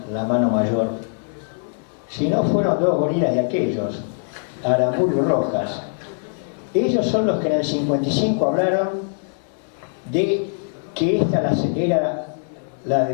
mano mayor, sino fueron dos gorilas de aquellos, Aramburu y Rojas. Ellos son los que en el 55 hablaron de que esta era la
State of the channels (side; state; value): right; silent; 64 dB below the other